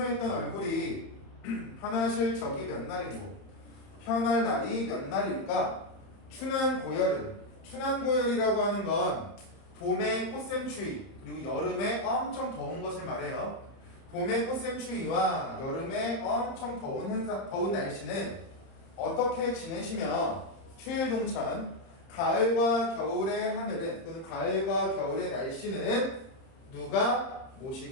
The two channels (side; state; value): right; late; 30 ms